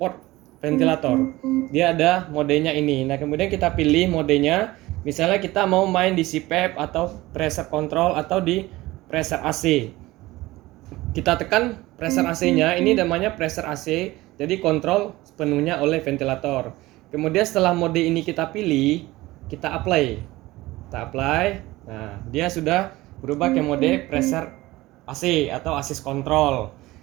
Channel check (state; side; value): quieter; left; 18.8 dB